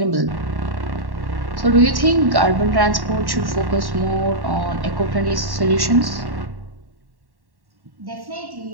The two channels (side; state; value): left; late; 1.1 ms